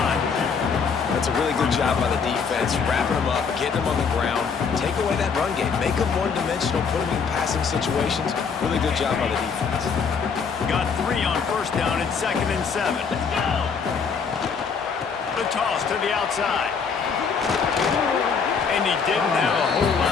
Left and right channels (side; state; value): right; quieter; 5.8 dB